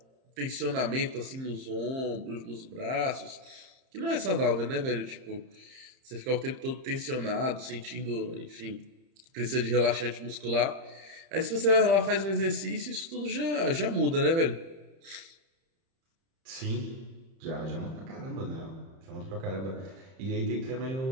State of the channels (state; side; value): late; left; 30 ms